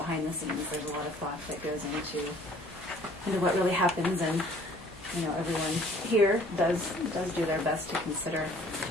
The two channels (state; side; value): normal; both; correlation 0.55